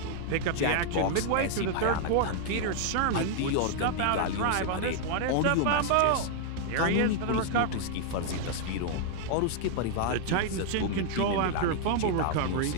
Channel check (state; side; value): different; both; correlation 0.00